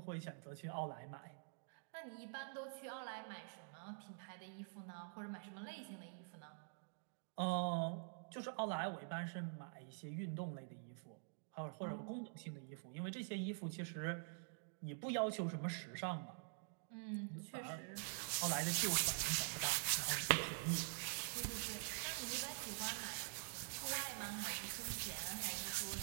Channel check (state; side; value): silent; left; digital silence